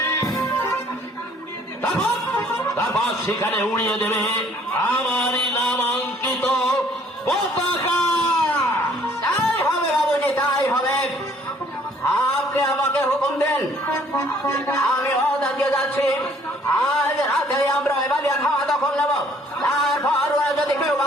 তারপর সেখানে উড়িয়ে দেবে আমারই নামাঙ্কিত পতাকা। তাই হবে বাবুজি, তাই হবে। আপনি আমাকে হুকুম দেন, আমি ওদেরকে যাচ্ছি, আজ রাতে আমরা ওই বালিয়া খাওয়া দখল নেব। তারপর ওরা যদি কেউ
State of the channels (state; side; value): normal; both; correlation 0.60